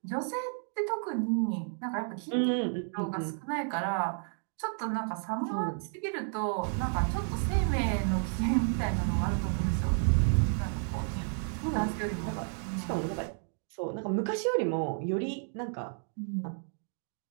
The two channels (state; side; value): silent; left; 57 dB below the other